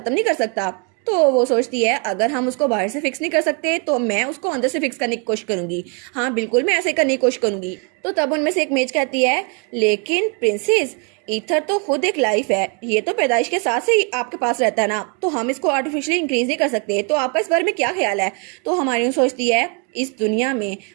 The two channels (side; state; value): left; quieter; 36.2 dB